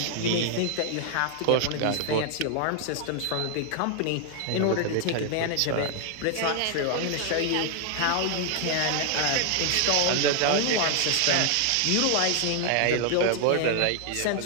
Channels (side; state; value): both; different; correlation 0.00